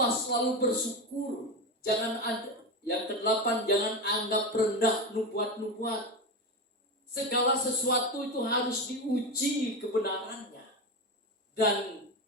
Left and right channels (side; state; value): both; normal; correlation 0.18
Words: selalu bersyukur. Jangan ada. Yang kedelapan, jangan anggap rendah nubuat-nubuat. Segala sesuatu itu harus diuji kebenarannya. Dan